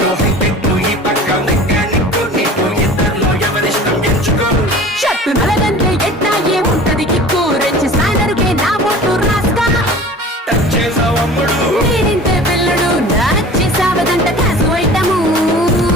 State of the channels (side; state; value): both; normal; correlation 0.41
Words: హైటెక్ ఈ పక్క మెకానిక్ నీకు ఇద్దరిలో ఎవరిష్టం ఎంచుకో. షర్టు నలగంటే ఎట్టా ఏముంటది కిక్కు. రెచ్చి స్నానరుకే నా ఓటు రాస్తా. టచ్ చేసావు అమ్ముడు నేనింతే పిల్లడు నచ్చి సావదంట కాసు ఐటము.